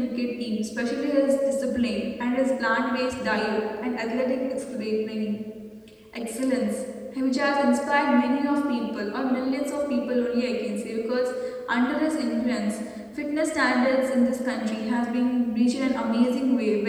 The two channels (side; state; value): both; identical; correlation 1.00